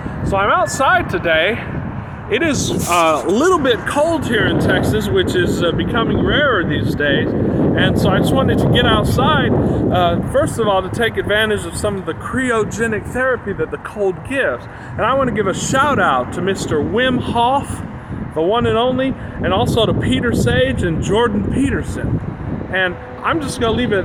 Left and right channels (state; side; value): identical; both; correlation 1.00